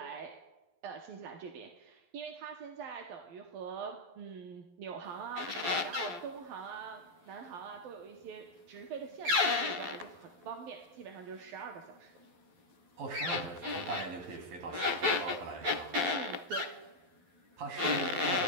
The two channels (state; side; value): late; left; 12 ms